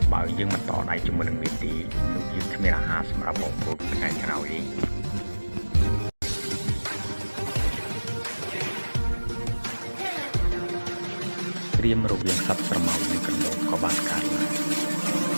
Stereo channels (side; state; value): both; inverted; correlation -1.00